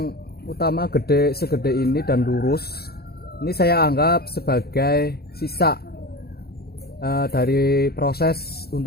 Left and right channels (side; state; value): right; late; 0.46 ms